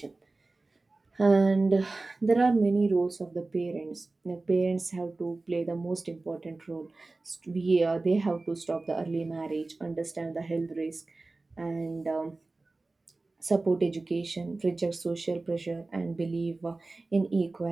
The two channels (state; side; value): quieter; left; 3.3 dB